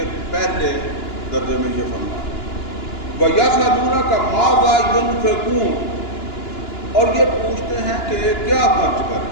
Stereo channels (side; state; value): right; late; 2.9 ms